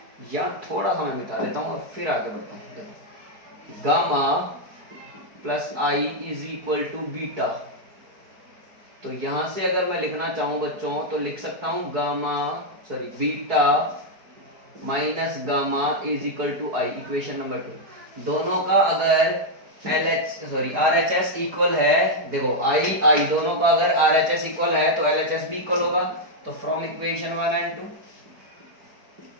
यहाँ थोड़ा सा मैं मिटा देता हूँ और फिर आगे बढ़ता हूँ। देखो gamma plus i is equal to beta, तो यहां से अगर मैं लिखना चाहूं बच्चों तो लिख सकता हूं beta minus gamma is equal to i, equation number 2। दोनों का अगर RHS इक्वल है, देखो i दोनों का अगर RHS इक्वल है तो LHS भी इक्वल होगा। तो फ्रॉम इक्वेशन 1 एंड 2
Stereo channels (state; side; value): late; left; 4.6 ms